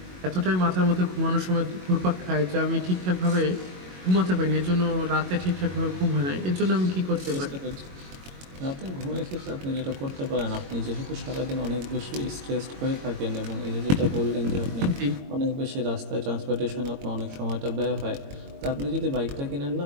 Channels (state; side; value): late; left; 22 ms